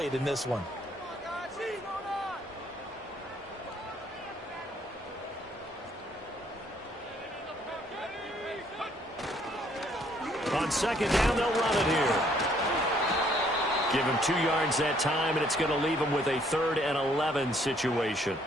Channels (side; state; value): both; normal; correlation 0.65